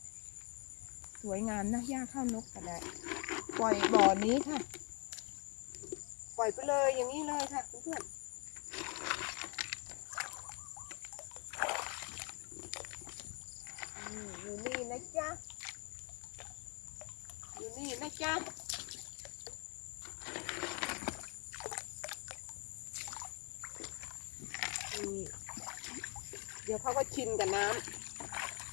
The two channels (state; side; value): quieter; right; 33.4 dB